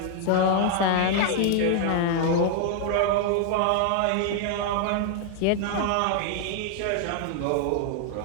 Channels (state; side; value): different; both; correlation 0.00